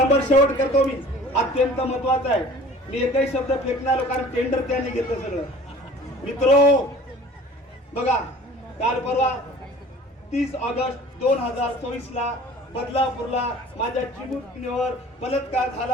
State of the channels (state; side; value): normal; both; correlation 0.46